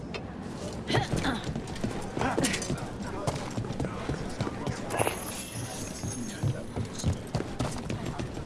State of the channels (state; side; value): identical; both; correlation 1.00